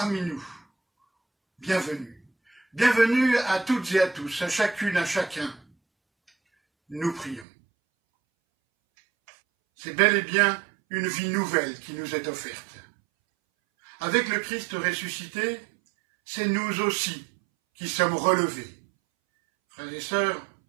nous. Bienvenue. Bienvenue à toutes et à tous, à chacune, à chacun. Nous prions. C'est bel et bien une vie nouvelle qui nous est offerte. Avec le Christ ressuscité, c'est nous aussi qui sommes relevés. Frères et sœurs,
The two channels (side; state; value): left; drops out; at 7.5 s